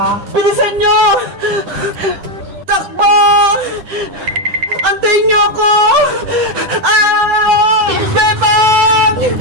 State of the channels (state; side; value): late; left; 10 ms